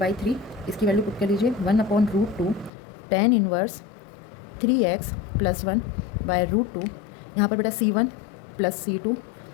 इसकी वैल्यू पुट कर लीजिए 1/√2 tan इनवर्स 3x प्लस 1/√2, यहाँ पर बेटा C1 प्लस C2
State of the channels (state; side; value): drops out; right; at 2.7 s